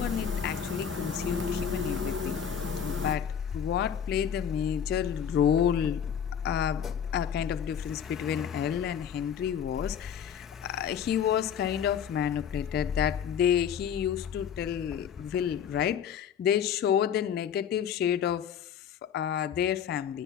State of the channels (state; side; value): quieter; right; 8.3 dB